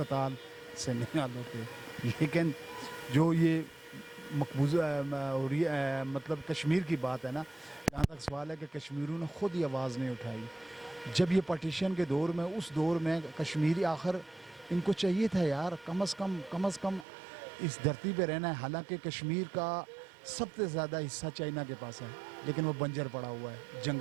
سے نہیں حل ہوتے۔ لیکن جو یہ مقبوضہ مطلب کشمیر کی بات ہے نا، جہاں تک سوال ہے کہ کشمیریوں نے خود ہی آواز نہیں اٹھائی۔ جب یہ پارٹیشن کے دور میں، اس دور میں کشمیری آخر ان کو چاہیے تھا یار کم از کم اس دھرتی پہ رہنا ہے۔ حالانکہ کشمیر کا سب سے زیادہ حصہ چائنا کے پاس ہے، لیکن وہ بنجر پڑا ہوا ہے،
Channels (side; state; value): left; drops out; at 17.1 s